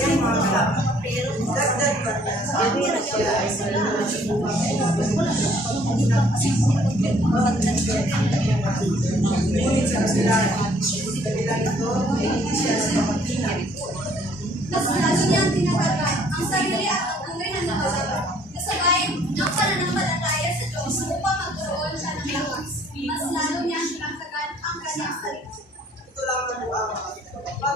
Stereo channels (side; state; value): both; normal; correlation 0.61